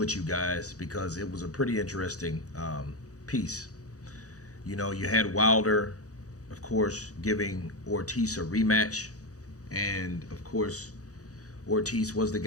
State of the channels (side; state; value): right; late; 0.66 ms